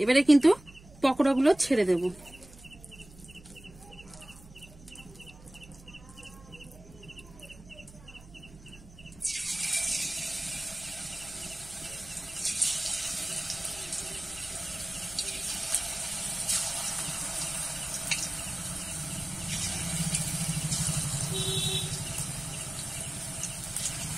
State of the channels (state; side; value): noise; right; hum, 20 dB below the sound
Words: এবারে কিন্তু পকোড়াগুলো ছেড়ে দেব।